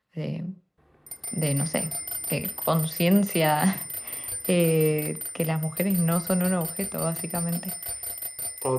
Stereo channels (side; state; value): both; identical; correlation 1.00